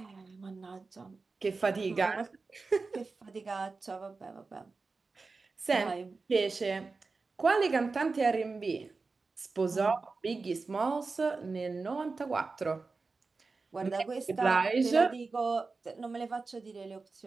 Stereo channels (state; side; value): quieter; left; 4.1 dB